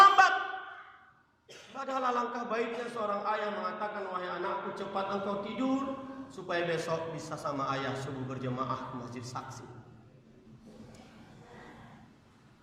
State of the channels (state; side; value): identical; both; correlation 1.00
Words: Padahal alangkah baiknya seorang ayah mengatakan, wahai anakku cepat engkau tidur, supaya besok bisa sama ayah subuh berjemaah ke masjid saksi.